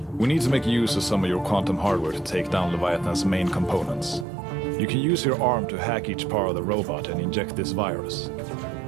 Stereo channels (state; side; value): drops out; left; at 4.2 s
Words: We need to make use of some of your quantum hardware to take down Leviathan's main components. You can use your arm to hack each part of the robot and inject this virus.